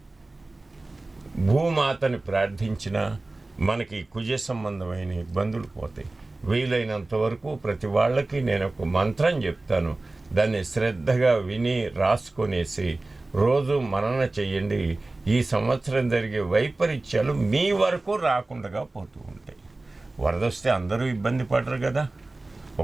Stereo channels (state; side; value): quieter; left; 3.1 dB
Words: భూమాతని ప్రార్థించిన మనకి కుజ సంబంధమైన ఇబ్బందులు పోతాయి. వీలైనంత వరకు ప్రతి వాళ్ళకి నేను ఒక మంత్రం చెప్తాను, దాన్ని శ్రద్ధగా విని రాసుకొనేసి రోజు మనన చెయ్యండి. ఈ సంవత్సరం జరిగే వైపరీత్యాలు మీ వరకు రాకుండా పోతూ ఉంటాయి. వరద వస్తే అందరూ ఇబ్బంది పడరు కదా.